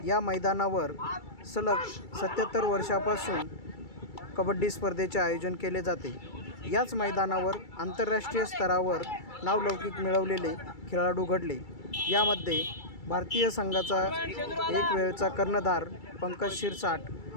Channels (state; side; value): late; right; 2.3 ms